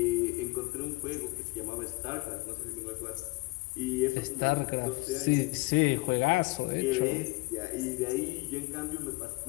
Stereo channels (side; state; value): right; quieter; 24.2 dB